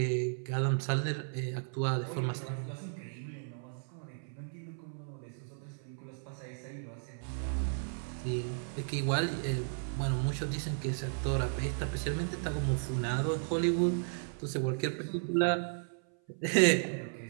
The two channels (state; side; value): silent; left; 55 dB below the other